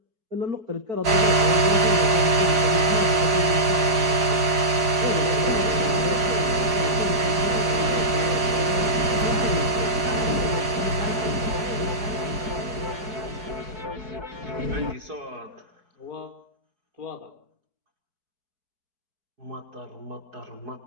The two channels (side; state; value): left; late; 4.9 ms